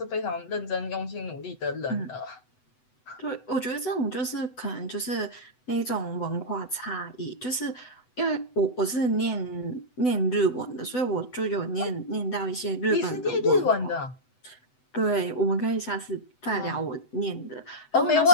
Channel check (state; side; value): late; right; 8.0 ms